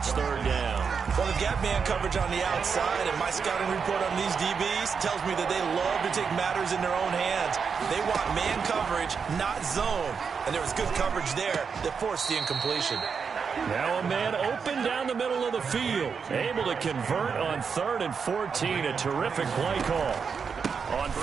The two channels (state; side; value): quieter; left; 6.0 dB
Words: third down. Well, they've got man coverage on the outside, and my scouting report on these DBs tells me that they love to take matters in their own hands. They want man coverage, not zone. And there was good coverage there that forced the incompletion. Now a man open down the middle of the field. Able to convert on 3rd and 14. A terrific play call. On